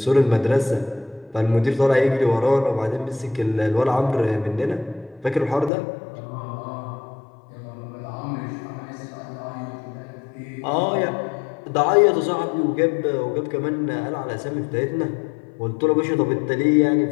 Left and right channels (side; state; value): right; drops out; at 5.7 s